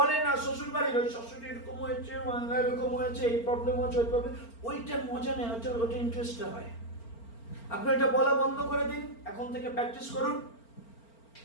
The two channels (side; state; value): right; late; 4.4 ms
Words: না, শ্বশুর বাড়ির ওই শাশুড়ি এরকম হয়েছে, বাংলা এরকম হয়েছে, এই প্রবলেম হচ্ছে, ওই প্রবলেম, ওইটা মজা নেই, ওইটা ইন্টারেস্টটা হয়। আপনি এটা বলা বন্ধ করে দিন, এখন থেকে প্র্যাকটিস করুন